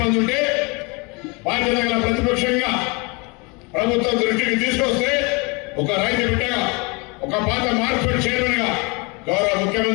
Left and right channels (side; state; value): right; quieter; 29.3 dB